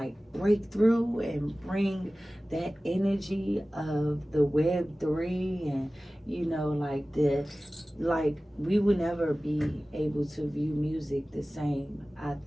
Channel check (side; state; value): both; normal; correlation 0.97